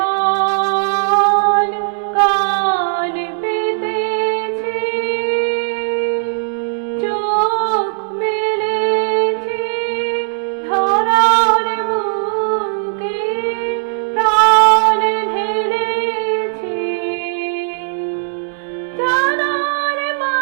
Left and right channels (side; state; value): left; silent; digital silence